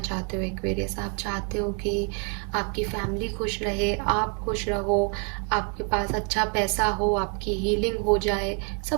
हो एक्वेरियस। आप चाहते हो कि आपकी फैमिली खुश रहे, आप खुश रहो, आपके पास अच्छा पैसा हो, आपकी हीलिंग हो जाए,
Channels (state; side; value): quieter; left; 39.4 dB